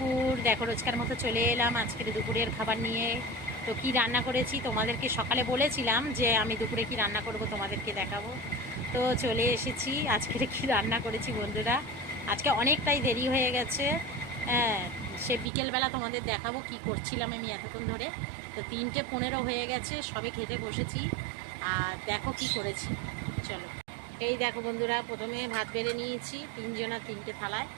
দেখো রোজকার মতো চলে এলাম আজকের দুপুরের খাবার নিয়ে। তো কি রান্না করেছি তোমাদেরকে সকালে বলেছিলাম যে আমি দুপুরে কি রান্না করব তোমাদেরকে দেখাবো। তো চলে এসেছি আজকের কি রান্না করেছি বন্ধুরা। আজকে অনেকটাই দেরি হয়ে গেছে। হ্যাঁ, সে বিকেলবেলা তোমাদের দেখাবো কি করছিলাম আমি এতক্ষণ ধরে। তো 3:15 হয়ে গেছে, সবে খেতে বসেছি। আর দেখো কি করেছি, চলো। এই দেখো বন্ধুরা, প্রথমে ভাত বেড়ে নিয়েছি তিনজনা 3টে থালায়।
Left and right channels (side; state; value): left; drops out; at 15.5 s